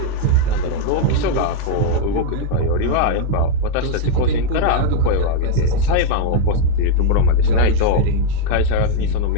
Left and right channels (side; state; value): both; different; correlation 0.00